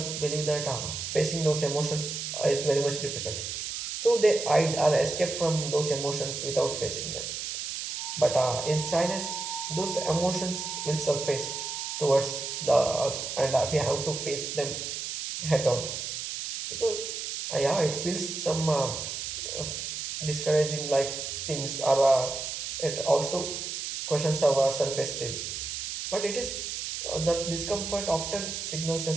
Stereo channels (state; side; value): noise; right; hiss, 5 dB below the sound